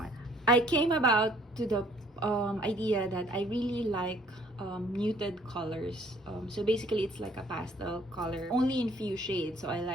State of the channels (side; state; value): both; normal; correlation 0.60